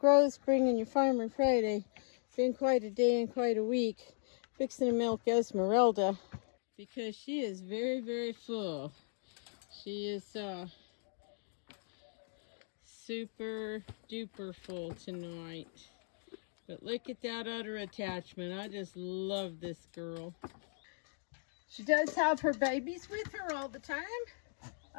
bringing you Farmer Friday. Been quite a day and quite a week fixing to milk Esmeralda because she is very, very full. She is super duper full tonight. But look at that udder attachment. I just love this girl. She does have her babies with her all the time.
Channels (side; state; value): right; silent; digital silence